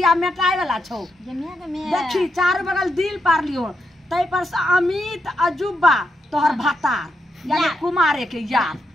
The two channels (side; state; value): both; normal; correlation 0.83